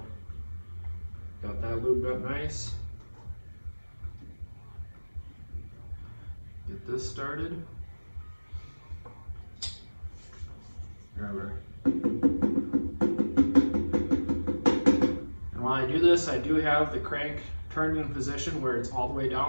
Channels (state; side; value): inverted; both; correlation -1.00